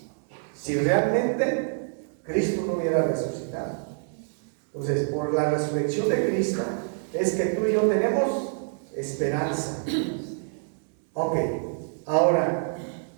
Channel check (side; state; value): left; silent; digital silence